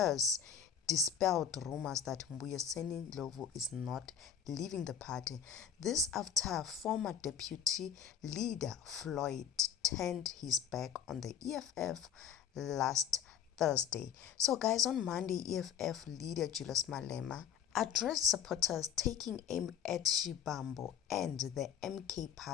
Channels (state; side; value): quieter; right; 8.4 dB